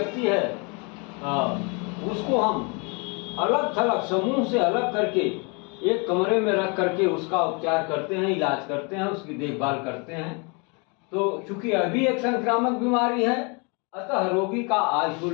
है उसको हम अलग थलग समूह से अलग करके एक कमरे में रख करके उसका उपचार करते हैं, इलाज करते हैं, उसकी देखभाल करते हैं। तो चूंकि अभी एक संक्रामक बीमारी है, अतः रोगी का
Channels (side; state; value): right; quieter; 32.4 dB